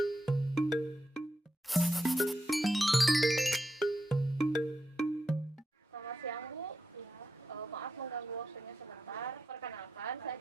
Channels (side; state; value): both; normal; correlation 0.86